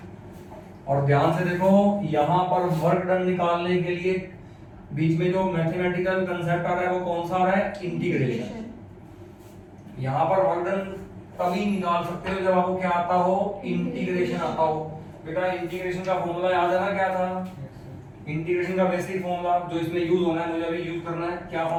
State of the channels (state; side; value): identical; both; correlation 1.00